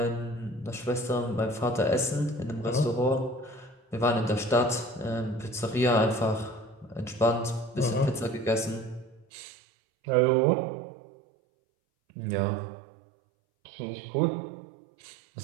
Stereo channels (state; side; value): drops out; left; at 9.2 s